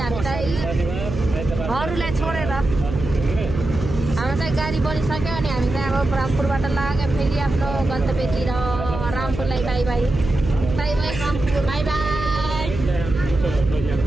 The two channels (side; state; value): right; noise; hum, 7 dB below the sound